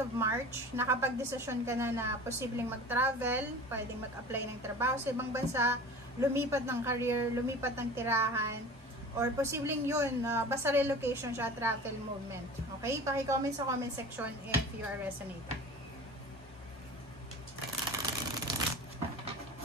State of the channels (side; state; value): both; normal; correlation 0.38